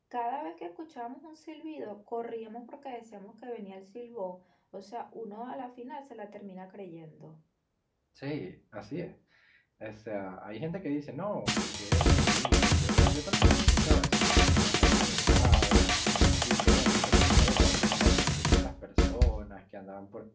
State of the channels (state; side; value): identical; both; correlation 1.00